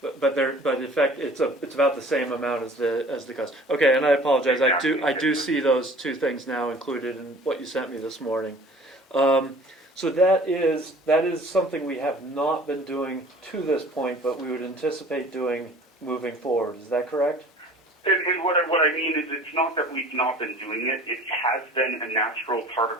But in fact, it's about the same amount as the cost. Okay, and I apologize. I do see those two things now included in what you sent me this morning. So that is something we have not been doing to this point, but we would anticipate doing moving forward. Is that correct? And what I mean is, it's not that we've not been doing it. It has been a natural part of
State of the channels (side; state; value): both; normal; correlation 0.48